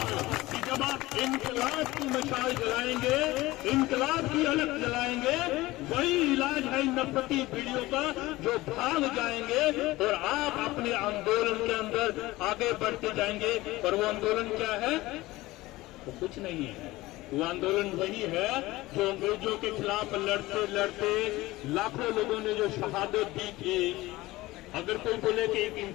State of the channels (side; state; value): right; quieter; 18.9 dB